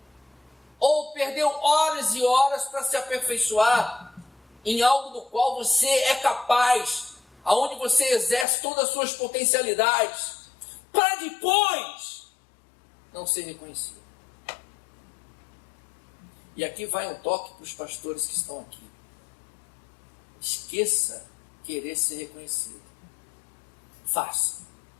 ou perdeu horas e horas para se aperfeiçoar em algo do qual você é capaz, aonde você exerce todas as suas potencialidades, para depois não ser reconhecido. E aqui vai um toque para os pastores que estão aqui. Esqueça querer ser reconhecido. Faça.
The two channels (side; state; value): right; drops out; at 8.5 s